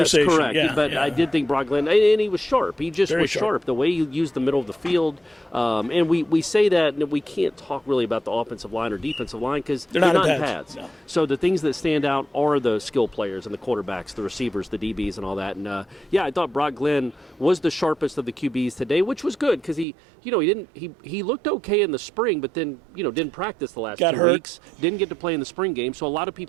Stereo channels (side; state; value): left; drops out; at 19.9 s